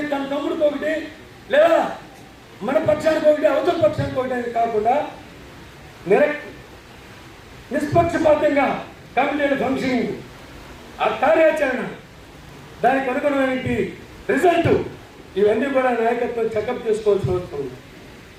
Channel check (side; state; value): both; identical; correlation 1.00